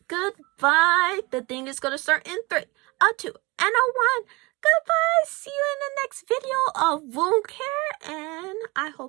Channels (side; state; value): left; quieter; 24.7 dB